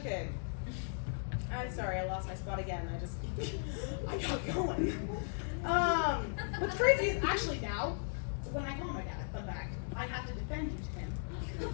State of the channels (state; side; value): silent; right; digital silence